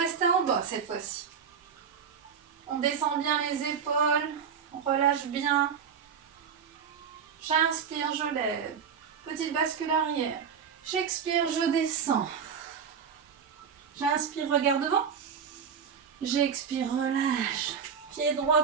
en bas cette fois-ci. On descend bien les épaules, on relâche bien. J'inspire, je lève. Petite bascule arrière. J'expire, je descends. J'inspire, regard devant. J'expire, relâche. Pied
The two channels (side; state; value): left; quieter; 6.9 dB